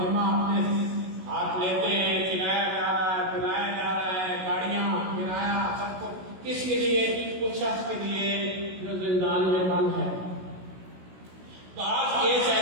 ذمہ اپنے ہاتھ لیتے ہیں، کھلایا جا رہا ہے، پلایا جا رہا ہے، گاڑیاں کرایہ سب کچھ کس کے لیے؟ اس شخص کے لیے جو زندان میں بند ہے۔ بعض کیس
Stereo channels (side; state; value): left; late; 16 ms